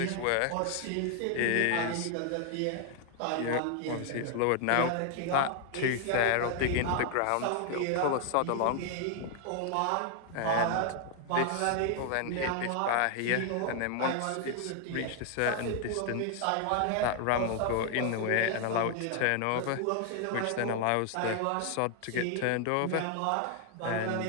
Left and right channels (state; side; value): different; both; correlation 0.00